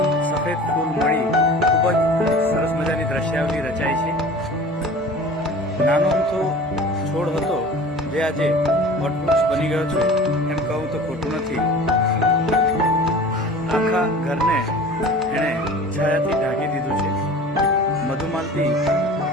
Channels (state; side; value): normal; both; correlation 0.41